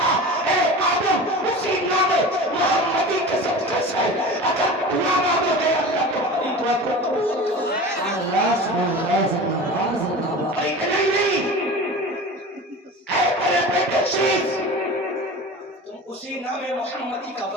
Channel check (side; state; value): both; normal; correlation 0.34